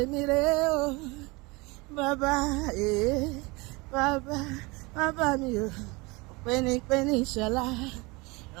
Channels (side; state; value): left; quieter; 25.3 dB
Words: rè o bàbá bàbá mi o pẹ́ni ìṣọ̀lá